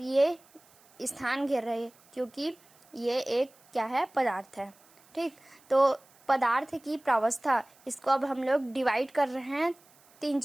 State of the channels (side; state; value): right; noise; hiss, 29 dB below the sound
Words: स्थान घेर रहे हैं क्योंकि ये एक क्या है, पदार्थ है। ठीक, तो पदार्थ की प्रावस्था, इसको अब हम लोग डिवाइड कर रहे हैं 3